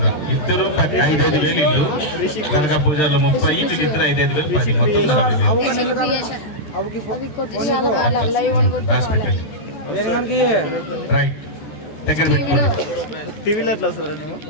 ఇద్దరు 5,000 ఇల్లు దర్గా పూజలో 30 వీళ్ళిద్దరు 5,000 10 మొత్తం 40,000 రైట్ దగ్గర పెట్టుకోండి.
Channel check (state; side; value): late; right; 14 ms